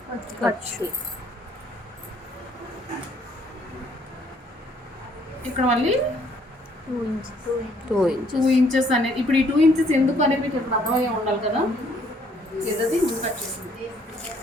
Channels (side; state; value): both; normal; correlation 0.64